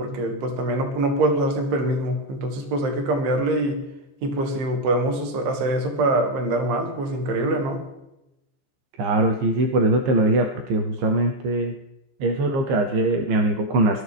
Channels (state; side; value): late; left; 15 ms